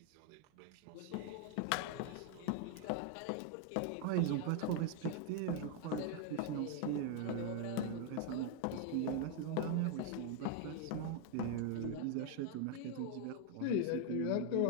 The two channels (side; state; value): both; different; correlation 0.00